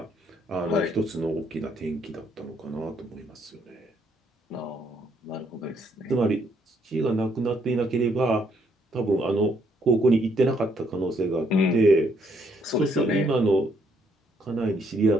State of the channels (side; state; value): both; normal; correlation 0.71